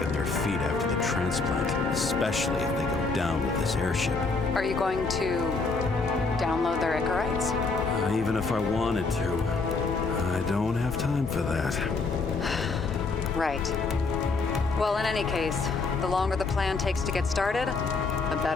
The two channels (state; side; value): quieter; right; 4.0 dB